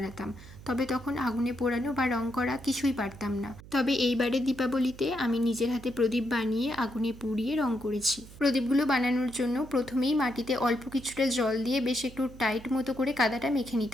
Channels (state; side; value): noise; right; hum, 18 dB below the sound